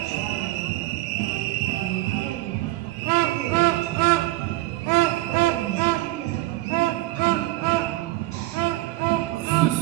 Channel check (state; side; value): quieter; left; 18.3 dB